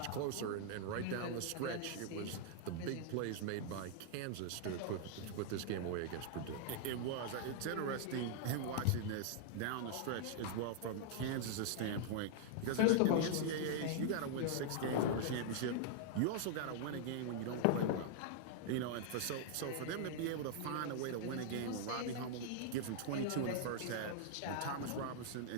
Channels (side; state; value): both; different; correlation -0.01